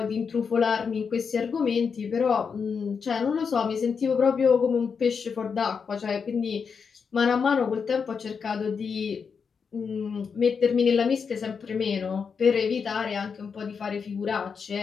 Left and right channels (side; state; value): right; quieter; 5.9 dB